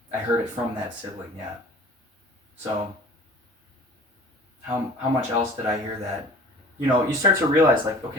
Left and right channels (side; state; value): both; normal; correlation 0.46